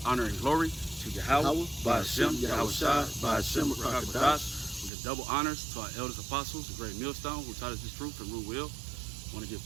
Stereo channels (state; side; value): drops out; left; at 4.9 s